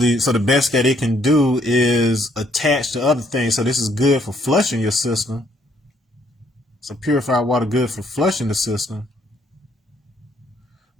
so the best that it can do is attach to other things. So this is good for flushing your system. So purified water good for flushing the system,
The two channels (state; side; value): normal; both; correlation 0.68